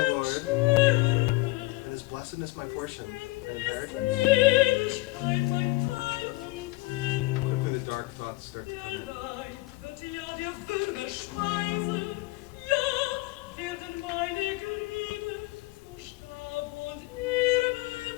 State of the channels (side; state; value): right; quieter; 21.9 dB